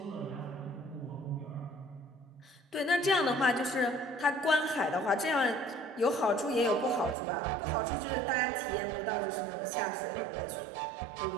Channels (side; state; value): left; drops out; at 7.2 s